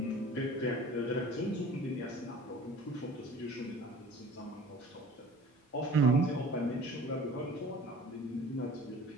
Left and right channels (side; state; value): both; normal; correlation 0.45